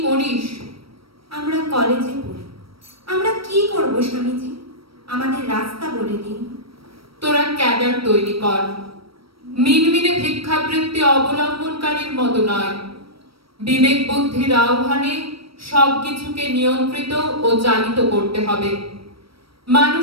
করিস? আমরা কলেজে পড়ি। আমরা কি করব স্বামীজি? আমাদের রাস্তা বলে দিন। তোরা ক্যাডার তৈরি কর। মিনমিনে ভিক্ষাবৃত্তি অবলম্বনকারীর মতো নয়, বিবেক বুদ্ধির আহ্বানে সবকিছুকে নিয়ন্ত্রিত ও চালিত করতে হবে।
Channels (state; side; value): late; left; 0.75 ms